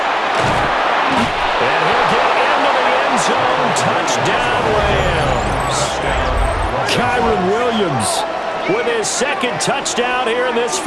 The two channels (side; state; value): both; identical; correlation 1.00